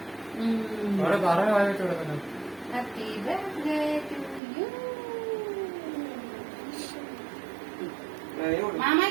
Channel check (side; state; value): left; drops out; at 4.4 s